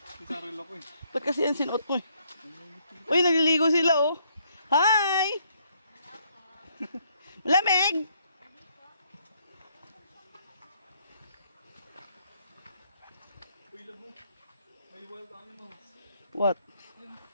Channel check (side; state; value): both; inverted; correlation -0.70